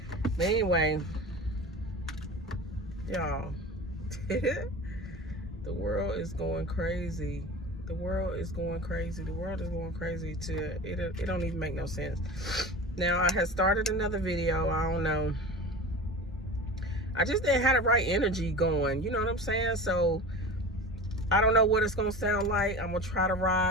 But anyway, y'all, the world is going crazy. The world is going crazy. The world is going crazy to it don't even make no sense. Now, I had started another video. I don't know. I just didn't have the right energy going. You know what I'm saying? So I don't know what it's gonna sound like. I'm gonna try to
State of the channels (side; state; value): both; normal; correlation 0.33